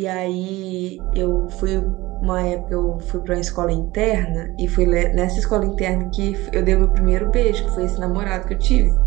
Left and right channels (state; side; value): quieter; left; 19.4 dB